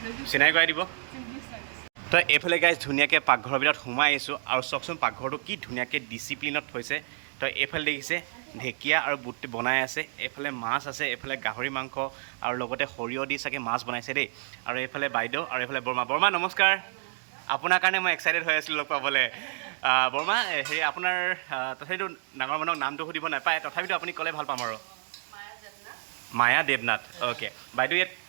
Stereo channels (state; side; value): silent; left; 59 dB below the other